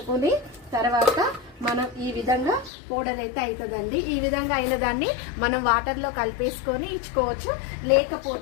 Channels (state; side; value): drops out; right; at 2.7 s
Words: తర్వాత మనం ఈ విధంగా పౌడర్ అయితే అవుతుందండి. ఈ విధంగా అయిన దాన్ని మనం వాటర్లో కలిపేసుకొని ఇచ్చుకోవచ్చు.